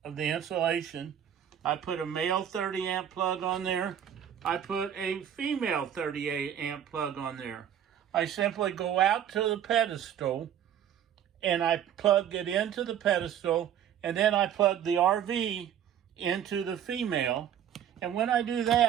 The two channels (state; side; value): quieter; left; 9.7 dB